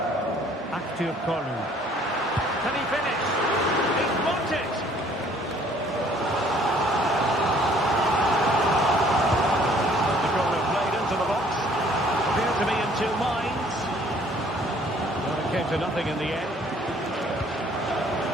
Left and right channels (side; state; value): both; normal; correlation 0.58